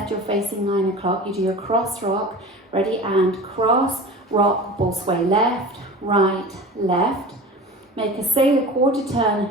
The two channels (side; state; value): both; normal; correlation 0.36